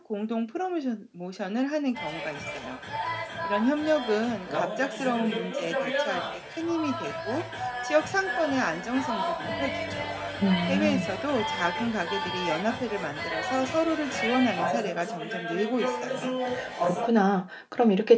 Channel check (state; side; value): identical; both; correlation 1.00